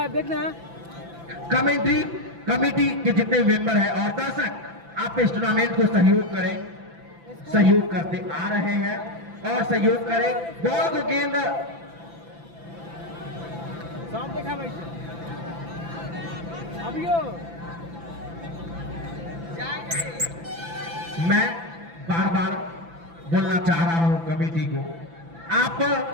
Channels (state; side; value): late; left; 5.9 ms